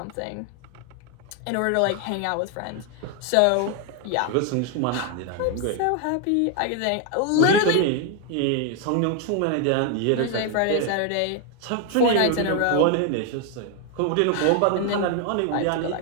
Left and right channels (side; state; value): both; different; correlation 0.01